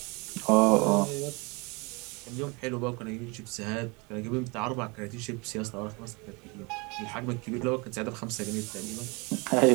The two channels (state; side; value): quieter; left; 28.4 dB